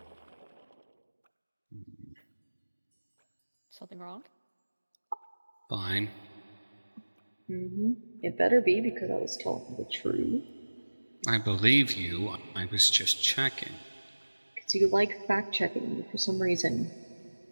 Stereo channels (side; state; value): both; inverted; correlation -1.00